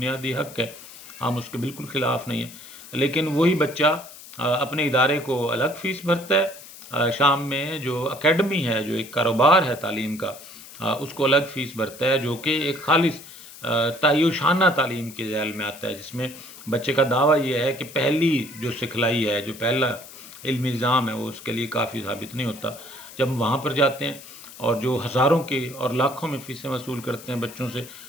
حق ہے، ہم اس کے بالکل خلاف نہیں ہیں، لیکن وہی بچہ اپنے ادارے کو الگ فیس بھرتا ہے، شام میں جو اکیڈمی ہے، جو ایک کاروبار ہے تعلیم کا، اس کو الگ فیس بھرتا ہے، جو کہ ایک خالص تعیشانہ تعلیم کے ذیل میں آتا ہے، جس میں بچے کا دعویٰ یہ ہے کہ پہلی جو سکھلائی ہے، جو پہلا علمی نظام ہے، وہ اس کے لیے کافی ثابت نہیں ہوتا. جب ہم وہاں پر جاتے ہیں اور جو ہزاروں کے اور لاکھوں میں فیسیں وصول کرتے ہیں بچوں سے،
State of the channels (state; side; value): noise; left; hiss, 17 dB below the sound